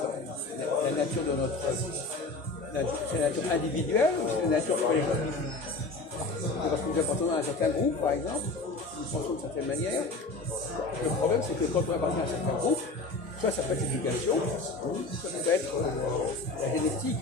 nature de notre... C'est la nature individuelle ou c'est la nature collective? Parce que nous appartenons à un certain groupe, par exemple, nous pensons d'une certaine manière. Le problème, c'est que quand on appartient à un certain groupe, soit ça peut être l'éducation, soit ça peut être la génétique,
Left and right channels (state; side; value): quieter; right; 3.4 dB